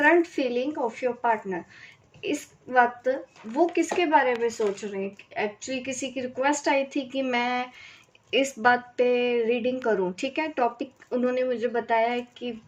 feeling of your partner. इस वक्त वो किसके बारे में सोच रहे हैं। एक्चुअली किसी की रिक्वेस्ट आई थी कि मैं इस बात पे रीडिंग करूँ। ठीक है, टॉपिक उन्होंने मुझे बताया है कि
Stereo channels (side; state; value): both; identical; correlation 1.00